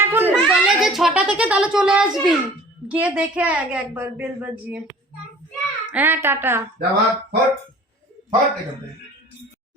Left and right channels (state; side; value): normal; both; correlation 0.47